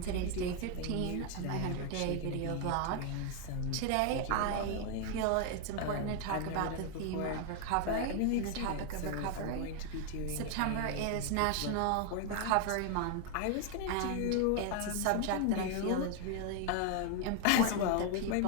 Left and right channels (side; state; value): both; different; correlation 0.01